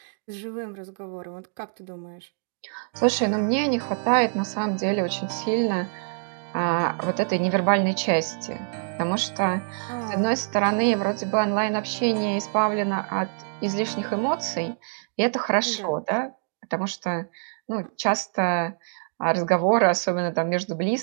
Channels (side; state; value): left; silent; digital silence